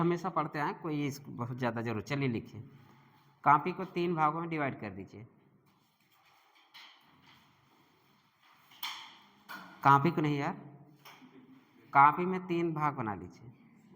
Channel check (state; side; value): identical; both; correlation 1.00